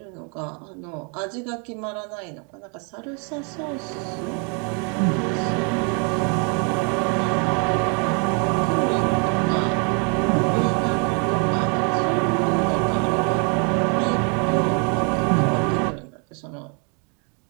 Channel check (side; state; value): left; quieter; 37.6 dB